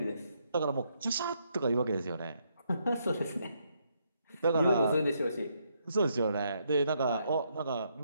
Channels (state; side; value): inverted; both; correlation -0.76